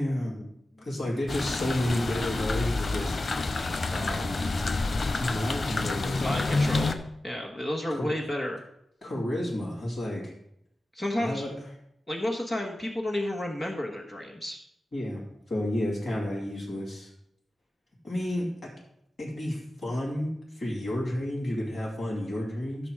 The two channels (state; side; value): normal; both; correlation 0.94